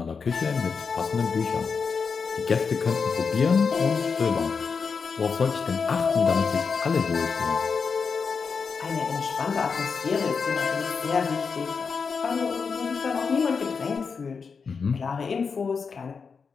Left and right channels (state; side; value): quieter; right; 5.4 dB